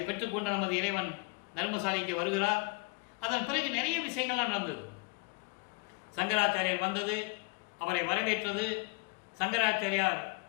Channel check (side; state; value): right; quieter; 29.6 dB